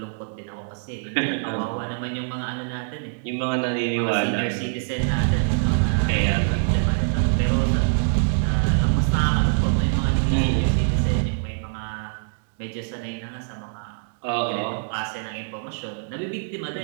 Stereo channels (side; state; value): left; silent; digital silence